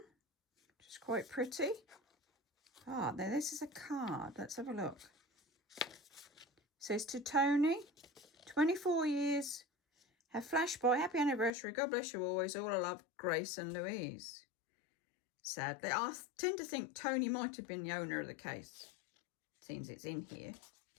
which is quite pretty. Ah, now this is a card. Let's have a look. It says, "To Tony, 24 years, have flashed by. Happy anniversary. God bless you always. All I love, Grace and Louise." Sadly, I tend to think Tony might have been the owner of the case. Seems it's in here,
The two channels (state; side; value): drops out; right; at 11.5 s